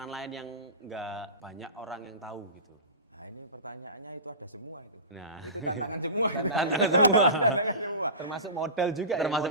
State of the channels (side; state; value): both; inverted; correlation -0.30